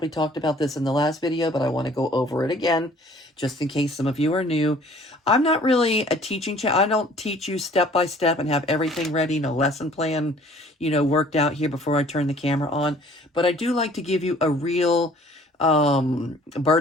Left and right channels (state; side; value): normal; both; correlation 0.54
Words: talked about this in the last video, but I want to go over it again, just in case some of you are new. I'm not really a teaching channel. I don't teach you step by step and have everything ready, no lesson plan, you know, worked out here before I turn the camera on. But I do like to give you a real